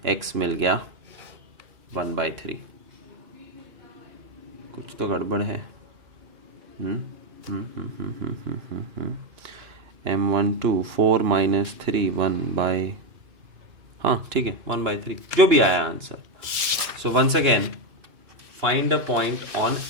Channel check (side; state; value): left; late; 2.9 ms